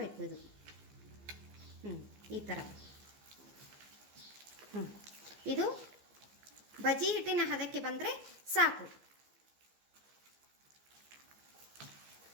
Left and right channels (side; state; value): left; late; 15 ms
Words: ಇದು. ಈ ಥರ ಇದು ಬಜಿ ಹಿಟ್ಟಿನ ಹದಕ್ಕೆ ಬಂದರೆ ಸಾಕು.